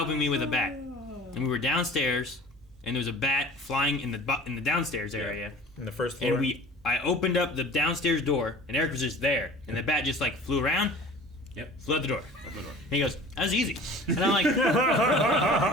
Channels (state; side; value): normal; both; correlation 0.42